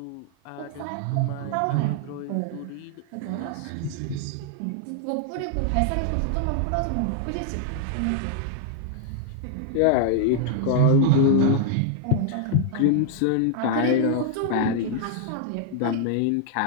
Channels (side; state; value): both; different; correlation 0.00